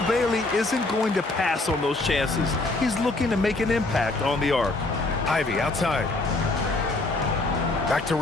Bailey isn't going to pass on those chances. He's looking to make an impact on the arc. Ivy outside. Back to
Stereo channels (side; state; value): right; quieter; 3.0 dB